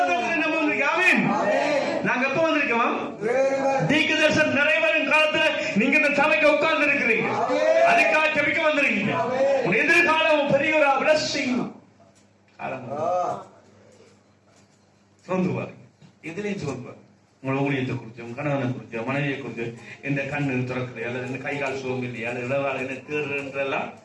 நம்ம வந்திருக்கோம். நாங்க எப்ப வந்திருக்கோம்? தீர்க்கதரிசனம் நிறைவேறும் காலத்துல நீங்க இந்த சபைக்கு உட்கார்ந்து இருக்கிறீங்க, அதுக்காக ஜெபிக்க வந்திருக்கீங்க. உன் எதிர்காலம் பெரிய ஒரு பிளஸிங். சோர்ந்துவாரு, எதுலையும் சோர்ந்துவாரு. உங்களோட ஊழியத்தை குறிச்சு, உங்க கணவனை குறிச்சு, மனைவியை குறிச்சு, இந்த கண்ணு திறக்குது அல்லது இந்த கை கால் சோம்பு இல்லையா, அல்லது இடவாள் என்ன தேடுறதெல்லாம்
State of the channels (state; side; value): identical; both; correlation 1.00